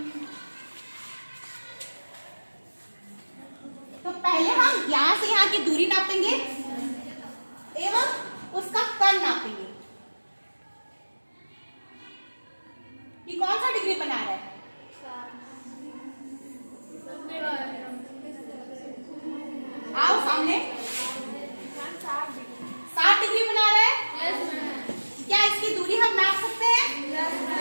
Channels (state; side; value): inverted; both; correlation -1.00